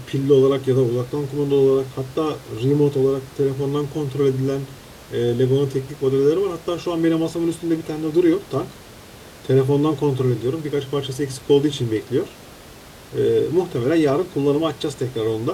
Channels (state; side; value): identical; both; correlation 1.00